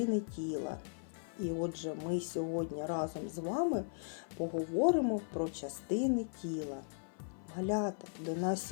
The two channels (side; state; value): right; silent; 53 dB below the other